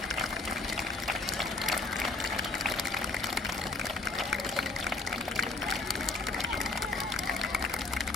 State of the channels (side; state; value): right; quieter; 3.5 dB